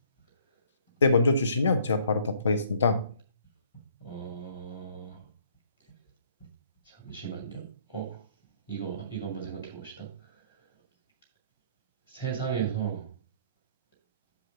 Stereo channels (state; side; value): inverted; both; correlation -0.61